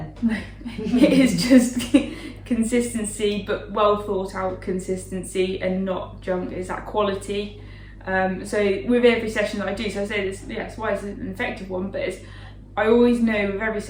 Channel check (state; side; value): identical; both; correlation 1.00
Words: It is just consistency, but well thought out consistency and not junk. Is that quality? So with every session that I do, so I say this, it's why it's an effective one, but I always know with every